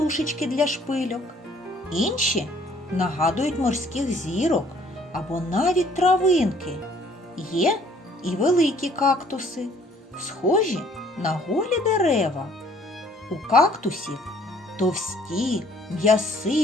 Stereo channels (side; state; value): both; normal; correlation 0.59